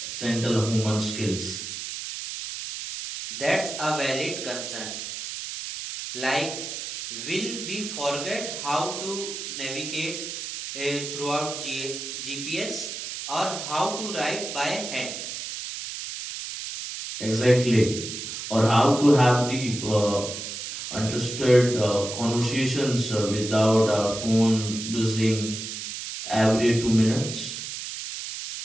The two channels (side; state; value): right; noise; hiss, 7 dB below the sound